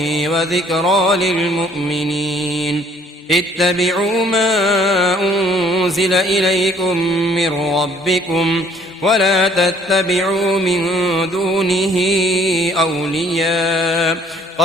وذكرى للمؤمنين اتبعوا ما أنزل إليكم من ربكم ولا تتبعوا من دونه أولياء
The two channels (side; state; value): both; normal; correlation 0.59